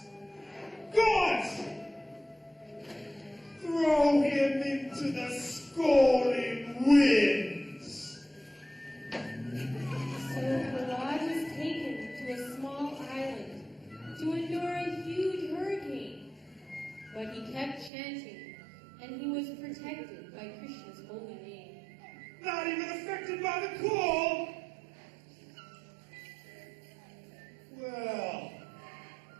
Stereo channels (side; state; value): left; drops out; at 17.9 s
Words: Gods! Throw him into the scalding winds. So Prahlad was taken to a small island to endure a huge hurricane. But he kept chanting, and he was protected by Krishna's holy name. Not even affected by the cold? Well,